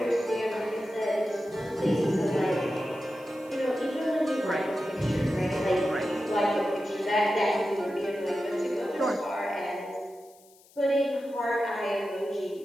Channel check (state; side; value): noise; left; hiss, 27 dB below the sound